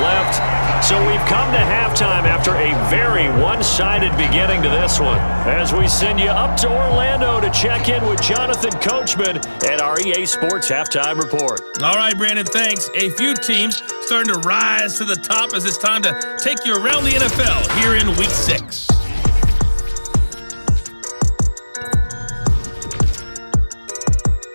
left. So we've come to halftime after a very one-sided beginning to this one. As we send you up to Orlando to check in with Jonathan Coachman at our EA Sports Halftime Report. All right, Brandon, thanks. A few teams starting to rise to the top as it's time to take you around the NFL here in Week 6.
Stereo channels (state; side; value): inverted; both; correlation -1.00